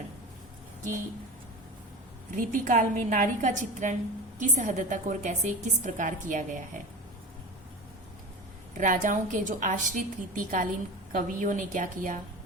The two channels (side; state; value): both; normal; correlation 0.29